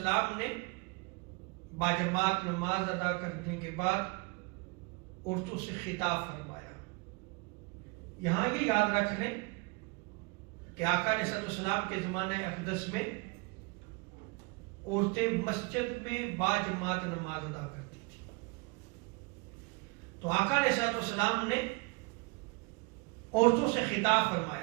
نے باجماعت نماز ادا کرنے کے بعد عورتوں سے خطاب فرمایا. یہاں یہ یاد رکھ لیں کہ آقا علیہ السلام کے زمانہ اقدس میں عورتیں مسجد میں باجماعت نماز ادا کرتی تھی. تو آقا علیہ السلام نے عورتوں سے خطاب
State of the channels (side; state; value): left; quieter; 28.8 dB